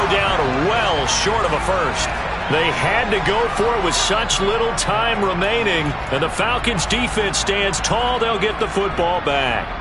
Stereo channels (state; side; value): identical; both; correlation 1.00